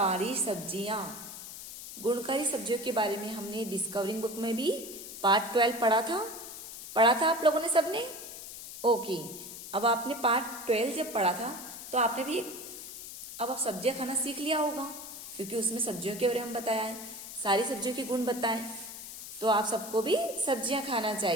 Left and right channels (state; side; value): noise; left; hiss, 11 dB below the sound